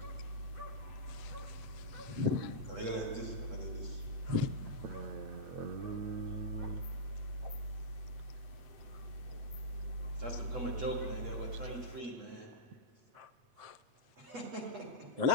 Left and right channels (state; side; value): late; left; 8.0 ms